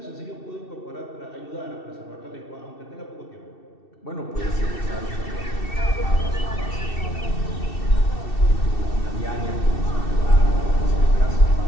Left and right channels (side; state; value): right; late; 2.7 ms